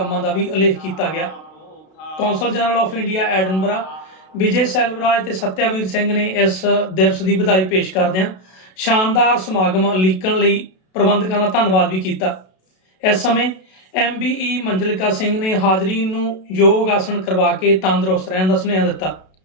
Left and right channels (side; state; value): right; late; 32 ms